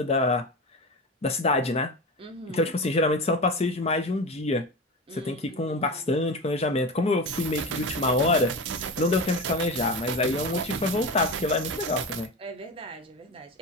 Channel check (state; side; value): normal; both; correlation 0.25